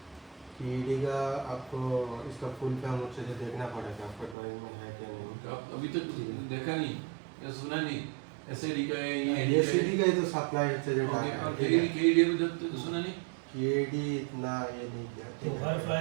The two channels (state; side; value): drops out; left; at 4.4 s